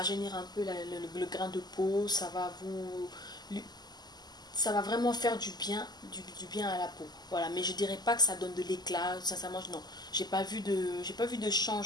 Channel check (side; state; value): right; late; 0.20 ms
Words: un peu le grain de peau, ça va vraiment faire du bien à la peau. Voilà, mais je dirais pas que ça donne de l'éclat. Sincèrement, non, j'ai pas vu de